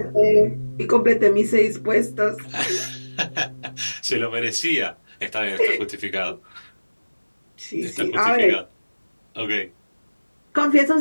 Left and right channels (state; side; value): inverted; both; correlation -1.00